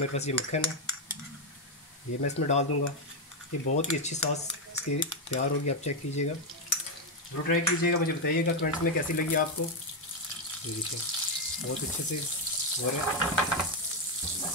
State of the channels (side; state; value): both; normal; correlation 0.04